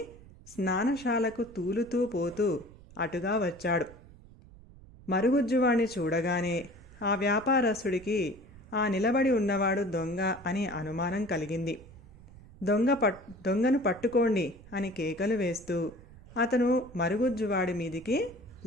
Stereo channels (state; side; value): noise; right; rumble, 20 dB below the sound